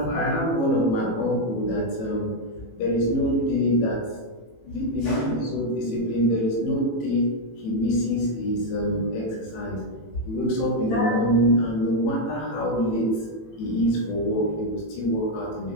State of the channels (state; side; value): late; right; 18 ms